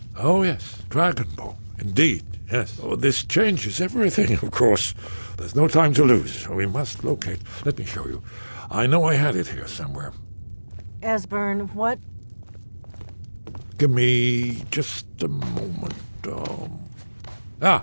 Oh, yes. Dragonbone. Indeed, yes. Oh, this changes everything, of course. There's no time to lose. We must locate... Let me show you. I know I had it here somewhere. Esbern, what... Give me just a moment.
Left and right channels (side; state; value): both; inverted; correlation -1.00